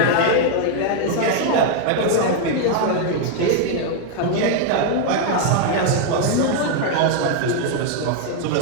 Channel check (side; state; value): both; different; correlation 0.00